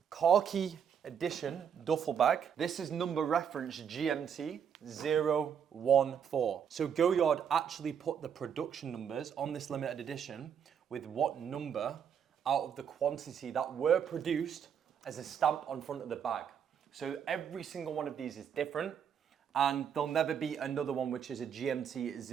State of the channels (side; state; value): left; quieter; 7.9 dB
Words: Khaki Edition duffel bag. This is number reference GMT 014. So Goyard actually put the production numbers on this limited edition with what number out of the quantity that were produced as a stamp on front of the bag. So every single one of these is different, and there'll never be another one which is a GMT